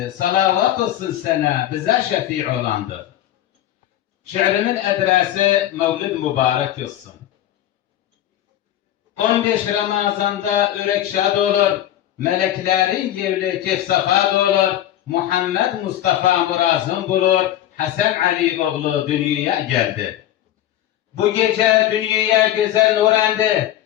Salavat olsun sana, bize şefi olandı. Şiirimin adresi Mevlid mübarek olsun. 15 Ramazan'da ürek şad olur, meleklerin gevli kefsafat olur, Muhammed Mustafa murazım bulur, Hasan Ali oğlu dünyaya geldi. Bu gece dünyaya güzel nur endi,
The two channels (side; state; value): right; quieter; 12.6 dB